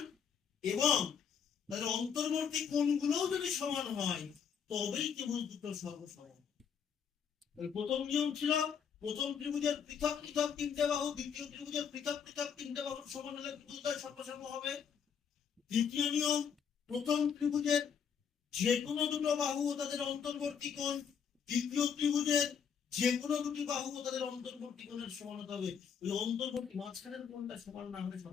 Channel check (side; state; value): right; quieter; 7.2 dB